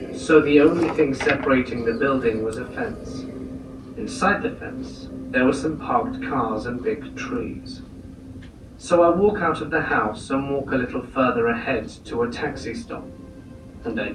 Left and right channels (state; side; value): identical; both; correlation 1.00